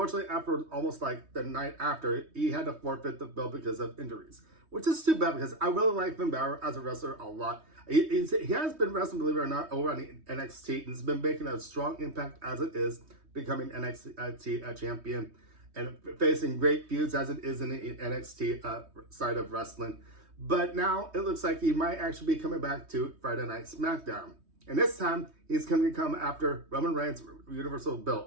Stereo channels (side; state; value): left; late; 3.2 ms